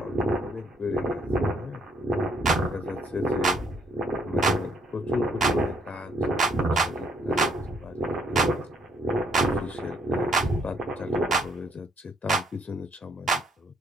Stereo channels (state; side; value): normal; both; correlation 0.68